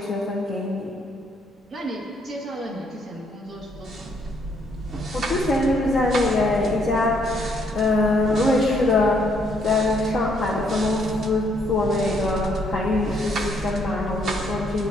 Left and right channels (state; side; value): normal; both; correlation 0.70